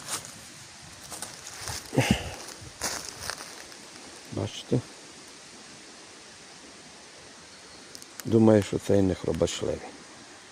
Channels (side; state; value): both; identical; correlation 1.00